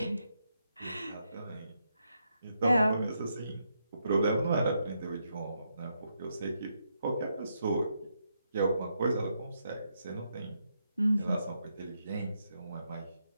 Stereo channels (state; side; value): inverted; both; correlation -0.80